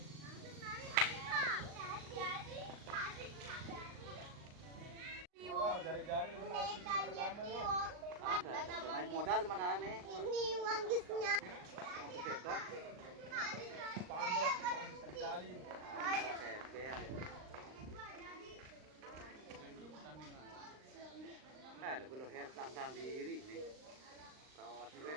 Modal mana nih? Ini manggisnya. Lagu leher tang diri nih. Kawas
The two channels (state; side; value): late; left; 39 ms